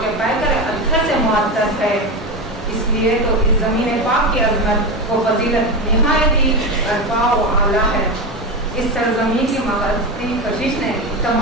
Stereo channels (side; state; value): both; normal; correlation 0.18